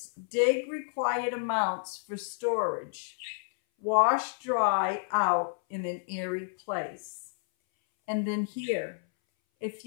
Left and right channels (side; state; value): right; silent; 58 dB below the other